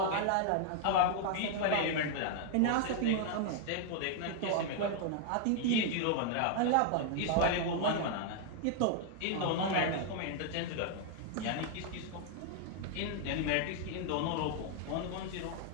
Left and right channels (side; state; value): both; different; correlation 0.00